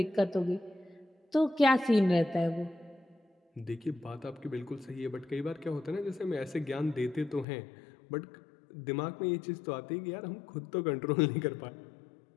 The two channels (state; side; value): drops out; right; at 7.5 s